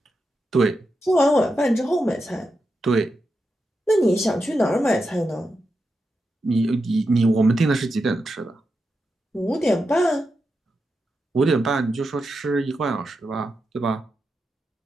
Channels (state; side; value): normal; both; correlation 0.88